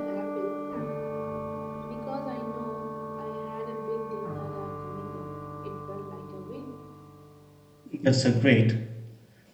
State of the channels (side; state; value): both; identical; correlation 1.00